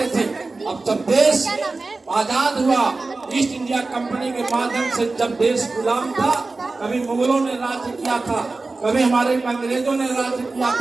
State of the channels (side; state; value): left; quieter; 3.6 dB